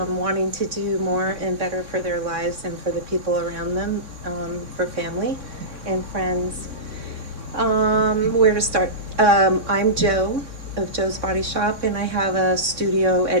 to do more and better for their lives and for the people around them, for family and friends. Where to start? I'm Joe of Joe's Body Shop, and I have a studio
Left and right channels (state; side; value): late; left; 3.6 ms